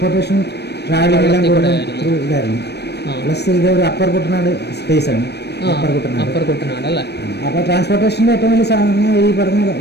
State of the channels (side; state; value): right; late; 0.48 ms